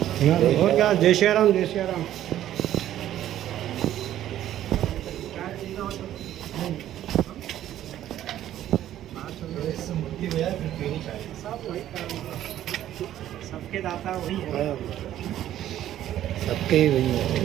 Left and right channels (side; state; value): left; quieter; 12.2 dB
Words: और क्या, जय श्री राम, जय श्री राम। सबके दाता वही है, सबके ही वही